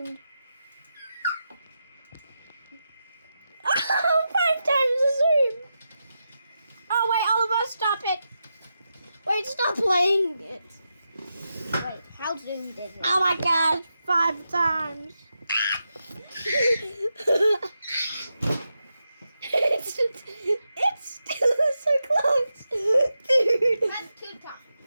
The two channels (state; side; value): inverted; both; correlation -0.88